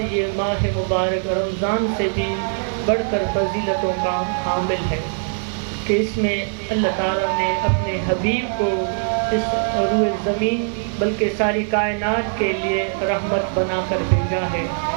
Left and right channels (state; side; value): silent; left; 57 dB below the other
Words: یہ ماہ مبارک رمضان سے بھی بڑھ کر فضیلتوں کا حامل ہے کہ اس میں اللہ تعالیٰ نے اپنے حبیب کو اس روئے زمین بلکہ ساری کائنات کے لیے رحمت بنا کر بھیجا ہے،